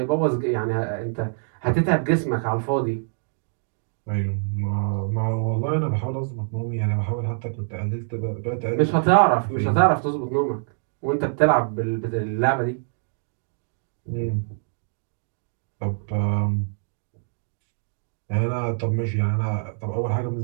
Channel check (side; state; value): left; silent; digital silence